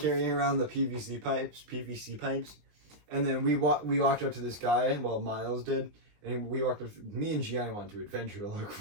around the PVC pipes, and then we walked up to this guy. Well, Miles did, and me and Gianni wanted to adventure to look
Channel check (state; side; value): late; left; 20 ms